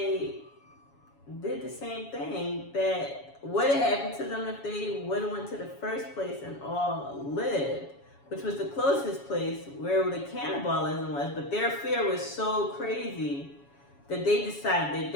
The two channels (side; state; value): right; late; 7.2 ms